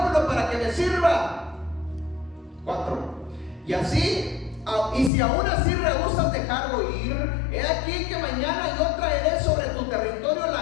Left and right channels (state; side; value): drops out; right; at 5.1 s